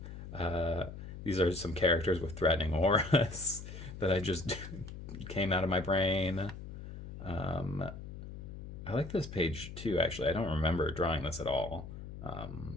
These are some characters with threatening auras that I just came out of my brain. I like this page too, actually. I don't remember drawing this at all,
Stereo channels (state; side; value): noise; left; hum, 11 dB below the sound